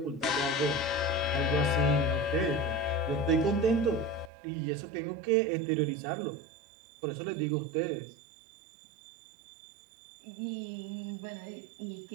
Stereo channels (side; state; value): left; drops out; at 4.3 s